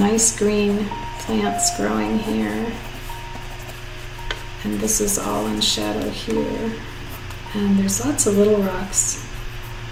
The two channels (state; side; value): identical; both; correlation 1.00